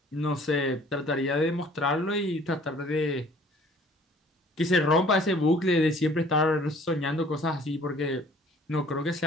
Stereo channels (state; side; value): normal; both; correlation 0.54